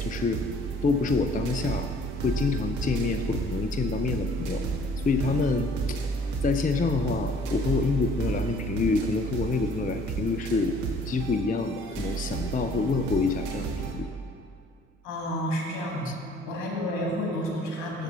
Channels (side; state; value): both; normal; correlation 0.56